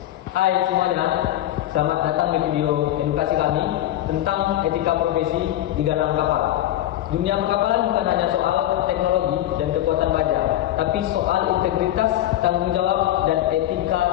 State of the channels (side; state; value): right; quieter; 13.5 dB